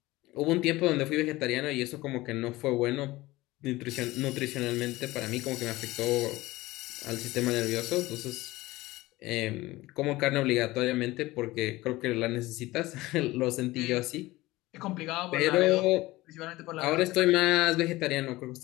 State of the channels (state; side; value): quieter; right; 19.0 dB